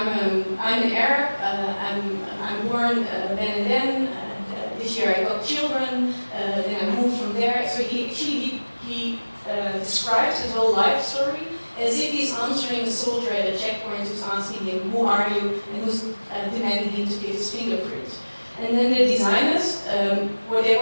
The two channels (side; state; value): both; inverted; correlation -1.00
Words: an Arab, I'm born then and then, this year I got children, then I moved from there. So he describes his whole life story as if he's answering a soldier at a checkpoint who's asking him, who are you, and who's demanding him to give his fingerprint. And then the designers, what they